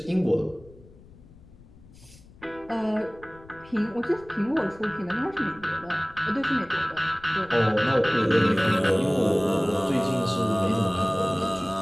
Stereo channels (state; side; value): noise; left; rumble, 23 dB below the sound